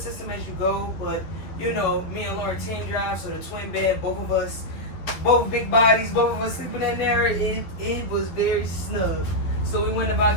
system as you go. But, you know, me and Lauren team drive, so the twin bed, both of us, both big bodies, both of us sleeping in there. It was very snug. So we went about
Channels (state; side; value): late; right; 11 ms